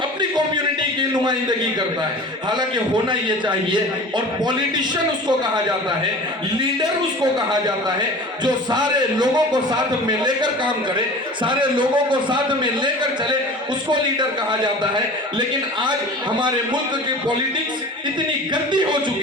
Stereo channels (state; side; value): normal; both; correlation 0.39